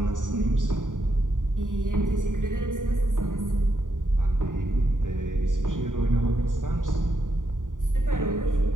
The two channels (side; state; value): left; late; 0.88 ms